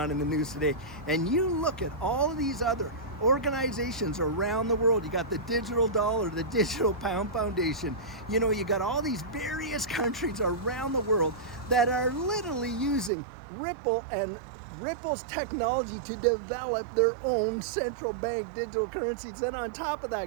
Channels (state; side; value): drops out; left; at 13.1 s